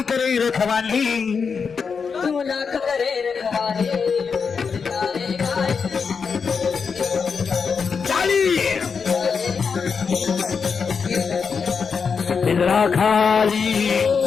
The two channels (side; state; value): right; quieter; 5.7 dB